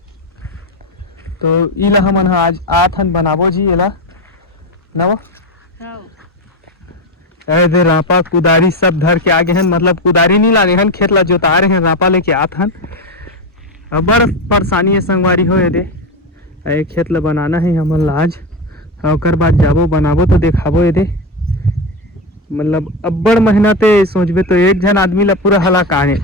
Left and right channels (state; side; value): normal; both; correlation 0.15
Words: तो इला हमन आज आत हन बनाबो जी एला नवा। दे रापा कुदारी सब धर के आगे हन, मतलब कुदारी नहीं लागे हन, खेत ला जोता रहे हैं, रापा लेके आत हन। बड़ परेशानी है संगवारी हो, ये खेत ला बनाना है हमन ला आज, और बाद जाबो बनाबो तो देखाबो ये। मतलब अब्बड़ मेहनत है, सोचबे तो एक जन आदमी ला पूरा हलाकान